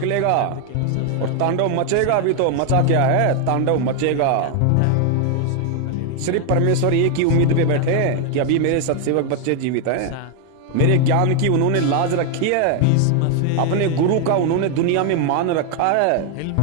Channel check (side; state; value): both; different; correlation 0.01